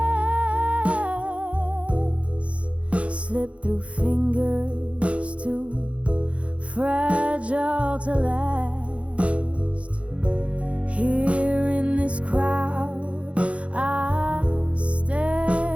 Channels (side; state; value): left; late; 0.062 ms